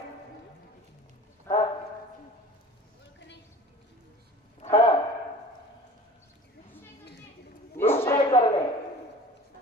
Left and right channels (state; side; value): normal; both; correlation 0.43